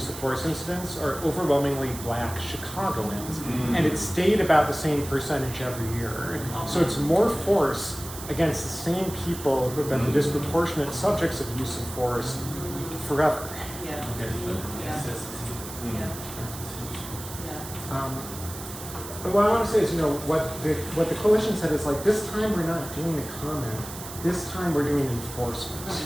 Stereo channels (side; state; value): right; noise; hiss, 12 dB below the sound